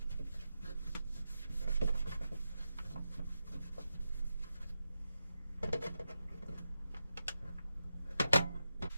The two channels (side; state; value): both; inverted; correlation -0.89